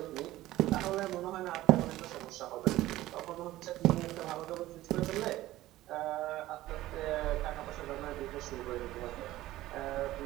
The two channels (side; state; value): left; quieter; 15.9 dB